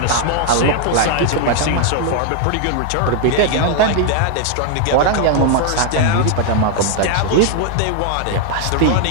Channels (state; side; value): different; both; correlation 0.00